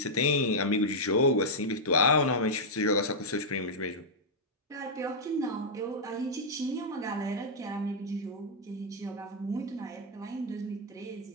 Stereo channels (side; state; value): both; normal; correlation -0.06